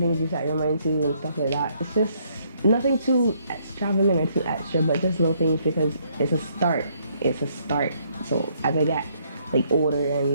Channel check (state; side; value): inverted; both; correlation -0.69